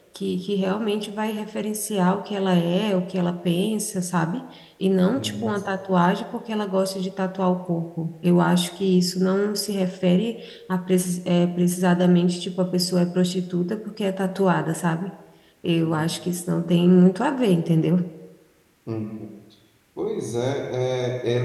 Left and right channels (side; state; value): both; identical; correlation 1.00